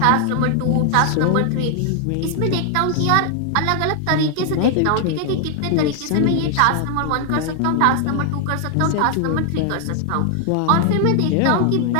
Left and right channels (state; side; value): different; both; correlation 0.00